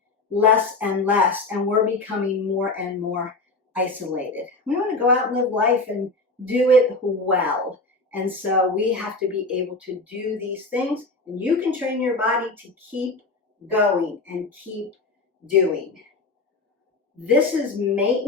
less and less, and we're becoming more and more isolated. We want to go out and live life and do it well. And so we have to be able to do these things, and you can train your body to keep going and keep doing. This is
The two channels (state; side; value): quieter; right; 3.2 dB